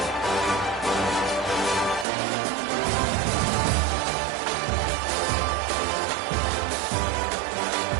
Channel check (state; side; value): drops out; left; at 2.1 s